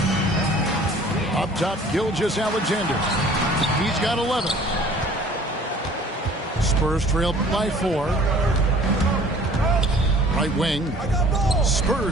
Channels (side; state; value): both; normal; correlation 0.50